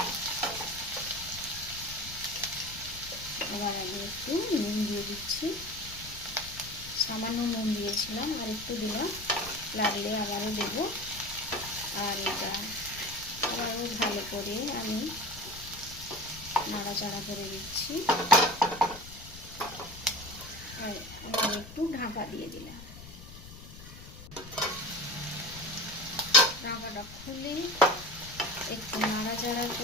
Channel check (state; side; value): noise; left; rumble, 15 dB below the sound